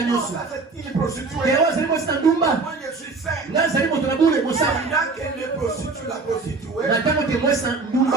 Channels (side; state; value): left; quieter; 3.9 dB